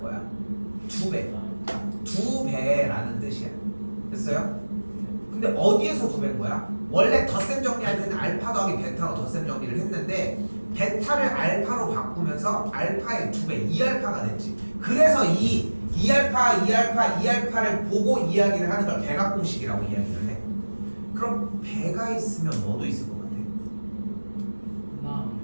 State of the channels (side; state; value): both; inverted; correlation -1.00